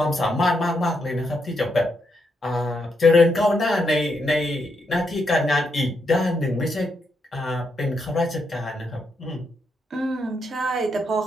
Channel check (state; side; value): normal; both; correlation 0.80